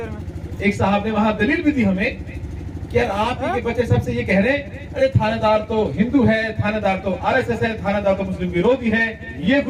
एक साहब ने वहां दलील भी दी हमें कि यार आप ही के बच्चे सबसे ये कह रहे हैं, अरे थानेदार तो हिंदू है, थानेदार तो आरएसएस है, थानेदार तो मुस्लिम विरोधी है, ये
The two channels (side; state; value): both; identical; correlation 1.00